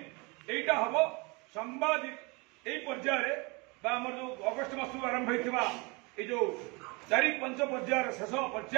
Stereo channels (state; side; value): quieter; left; 28.1 dB